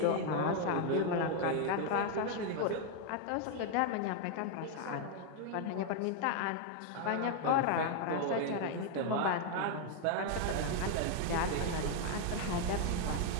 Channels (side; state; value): both; different; correlation 0.00